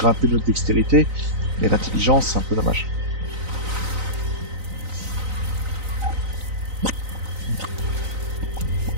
notre dextérité. Mais l'intelligence, c'est un peu dommage.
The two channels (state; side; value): late; left; 3.9 ms